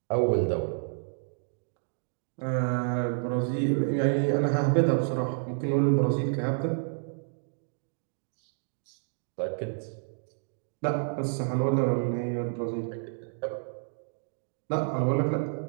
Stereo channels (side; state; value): left; silent; digital silence